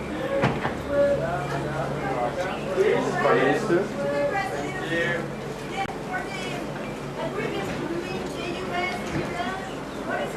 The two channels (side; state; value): both; identical; correlation 1.00